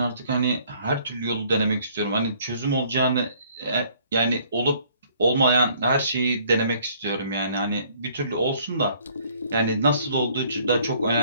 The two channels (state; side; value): inverted; both; correlation -0.60